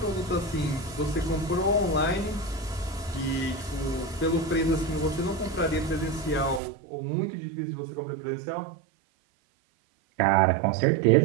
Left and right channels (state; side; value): drops out; left; at 6.6 s